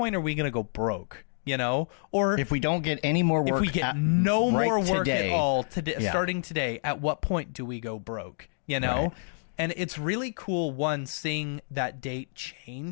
are we going to go broke? Or if we don't get any more work, if we get no more work today, at all today, starting today, at what point do we go broke? Right. And it's really cool, seeing that date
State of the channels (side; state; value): right; silent; digital silence